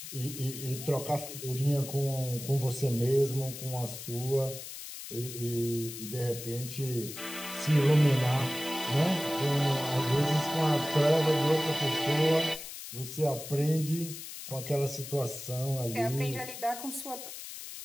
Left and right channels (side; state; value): left; noise; hiss, 10 dB below the sound